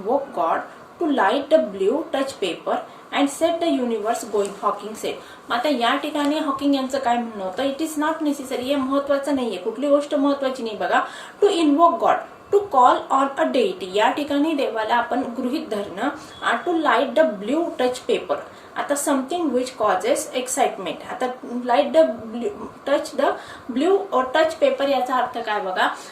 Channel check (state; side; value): identical; both; correlation 1.00